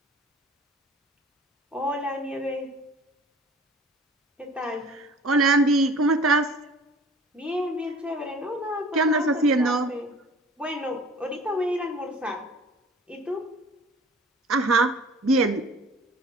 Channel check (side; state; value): both; normal; correlation 0.46